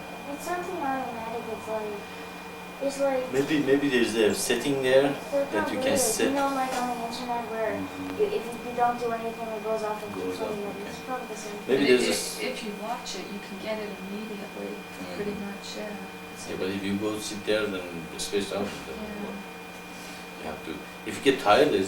It's something automatic. It's like Maybe there's a setting there that you can set. You know, like on the internet where if you don't do anything, it goes off and keeps on you. It's probably the same. Maybe there's this. If you watch it, you can get it immediately, pretty much. Yeah, but if you go sit there, then it's spaced out. Yeah. You have to. If you get tired,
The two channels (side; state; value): both; identical; correlation 1.00